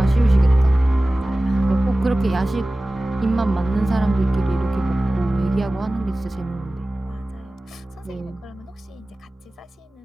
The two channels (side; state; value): both; normal; correlation 0.97